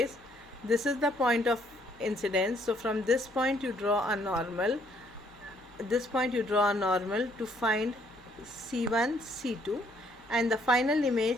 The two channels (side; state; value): both; normal; correlation 0.66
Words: This is the point of incidence. So from this point you draw a normal. This point you draw a normal to find C1, C2, and the final